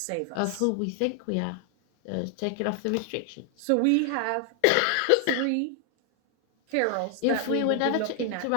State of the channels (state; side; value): different; both; correlation 0.00